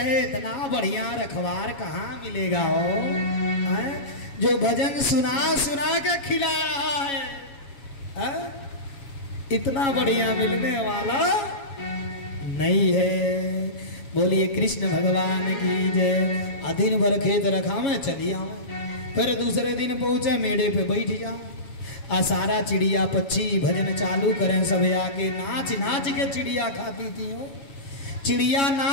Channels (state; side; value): late; right; 7.2 ms